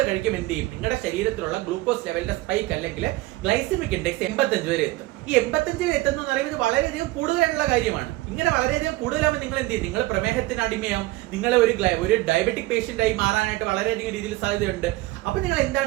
കഴിക്കും എന്ത് ചെയ്യും, നിങ്ങളുടെ ശരീരത്തിലുള്ള ഗ്ലൂക്കോസ് ലെവലിന്റെ സ്പൈക്ക് അല്ലെങ്കിൽ ഗ്ലൈസമിക് ഇൻഡെക്സ് 85 വരെ എത്തും. ഈ 85 വരെ എത്തുന്ന പറയുന്നത് വളരെയധികം കൂടുതലായിട്ടുള്ള കാര്യമാണ്. ഇങ്ങനെ വളരെയധികം കൂടുതലാകുമ്പോൾ നിങ്ങൾ എന്ത് ചെയ്യും, നിങ്ങൾ പ്രമേഹത്തിന് അടിമയാവും, നിങ്ങൾ ഒരു ഡയബറ്റിക് പേഷ്യന്റ് ആയി മാറാനായിട്ട് വളരെയധികം രീതിയിൽ സാധ്യതയുണ്ട്. അപ്പൊ നിങ്ങൾ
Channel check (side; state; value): left; quieter; 18.8 dB